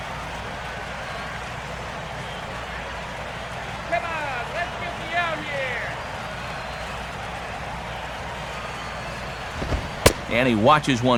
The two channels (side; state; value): both; identical; correlation 1.00